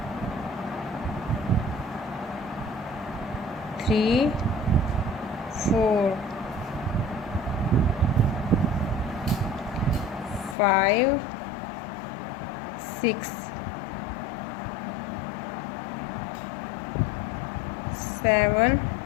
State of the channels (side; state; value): right; drops out; at 10.6 s